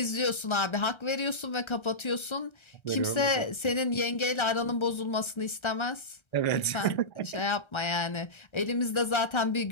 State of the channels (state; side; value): late; right; 1.3 ms